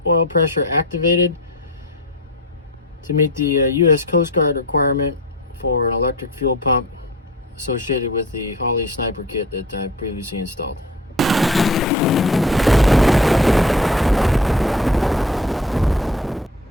oil pressure activated to meet the US Coast Guard requirement for an electric fuel pump associated with the Holley sniper kit that I previously installed.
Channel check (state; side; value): normal; both; correlation 0.37